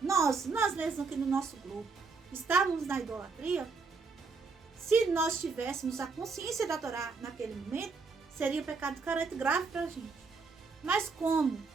mesmos aqui no nosso grupo, estávamos na idolatria, se nós tivéssemos a consciência da Torá naquele momento, seria um pecado de careta grave para a gente. Mas como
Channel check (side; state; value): left; quieter; 4.5 dB